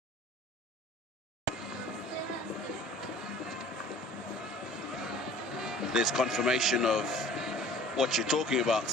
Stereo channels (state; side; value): normal; both; correlation 0.47